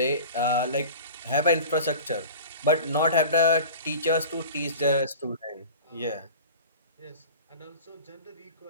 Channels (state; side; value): inverted; both; correlation -0.38